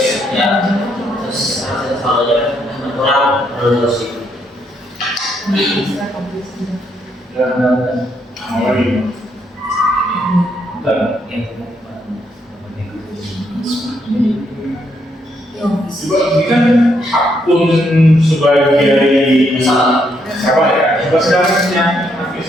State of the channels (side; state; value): both; normal; correlation 0.75